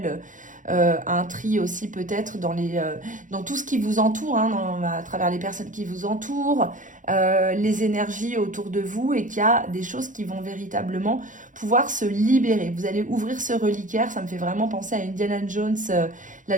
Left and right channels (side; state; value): left; late; 0.37 ms